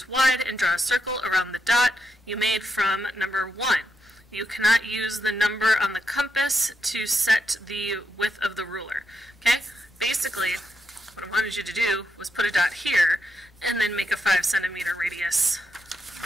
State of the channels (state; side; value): normal; both; correlation 0.83